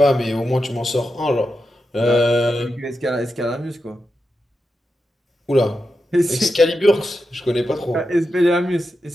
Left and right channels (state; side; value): normal; both; correlation 0.89